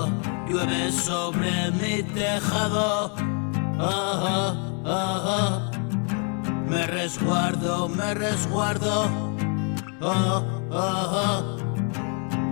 Llueve sobre mi tejado. Me resguardo.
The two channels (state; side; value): quieter; right; 38.7 dB